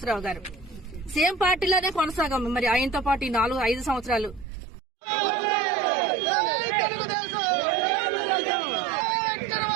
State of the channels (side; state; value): left; drops out; at 4.5 s